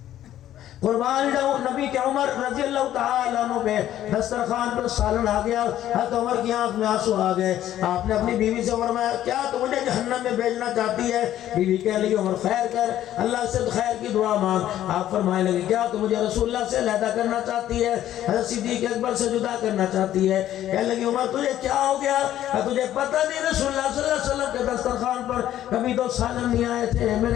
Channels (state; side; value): quieter; right; 12.3 dB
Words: قربان جاؤں نبی کے عمر رضی اللہ تعالیٰ عنہ پہ دسترخوان پر سالن آ گیا، حضرت عمر کی آنکھ میں آنسو آ گئے۔ آپ نے اپنی بیوی سے فرمایا کیا تو مجھے جہنم میں بھیجنا چاہتی ہے؟ بیوی کہہ لگی عمر خیر کر، اللہ سے خیر کی دعا مانگ۔ آپ فرمائے لگے کیا تو مجھے رسول اللہ سے علیحدہ کرنا چاہتی ہے، حضرت صدیق اکبر سے جدا کرنا چاہتی ہے؟ کہہ لگی عمر تجھے کیا ہو گیا؟ تجھے پتہ نہیں رسول اللہ صلی اللہ علیہ وسلم کے دسترخوان پر کبھی 2 سالن نہیں آئے تھے،